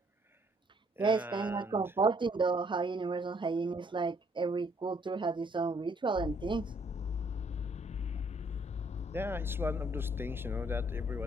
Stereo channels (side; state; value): both; normal; correlation 0.66